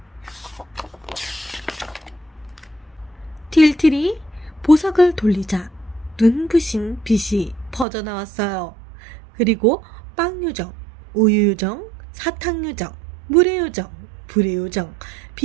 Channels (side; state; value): left; drops out; at 7.9 s